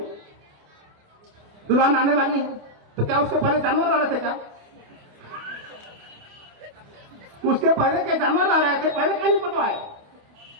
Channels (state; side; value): late; left; 28 ms